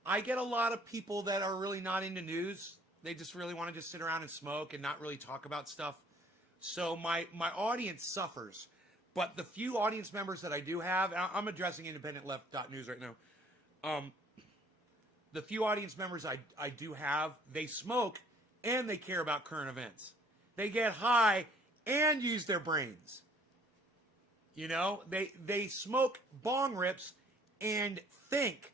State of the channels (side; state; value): both; normal; correlation 0.58